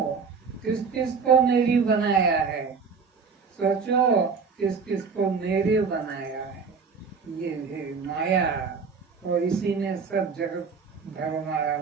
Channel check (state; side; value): quieter; left; 5.4 dB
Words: किस किस को मेरी बनाया है। सोचो, किस किस को मेरे बनाया है। ये है माया, और इसी में सब जगत भरमाया